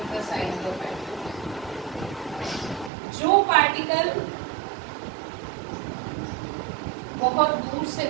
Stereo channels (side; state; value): left; drops out; at 2.9 s